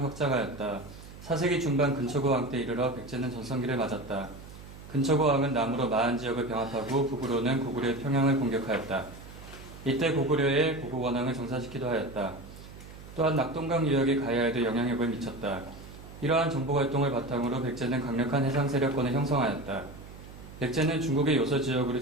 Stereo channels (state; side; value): noise; right; hum, 16 dB below the sound